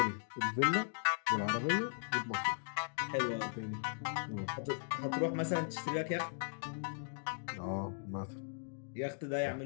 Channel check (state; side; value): silent; right; digital silence